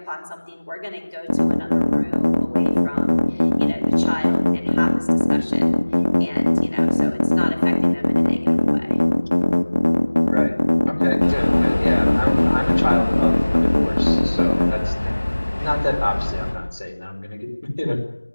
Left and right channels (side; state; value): both; inverted; correlation -1.00